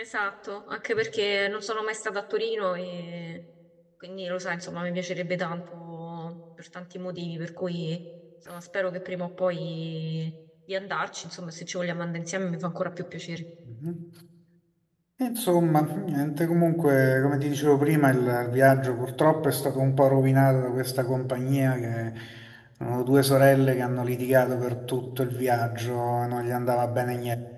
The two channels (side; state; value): both; identical; correlation 1.00